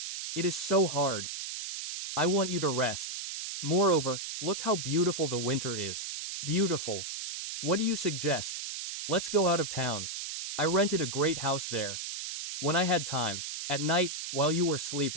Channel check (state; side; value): noise; right; hiss, 6 dB below the sound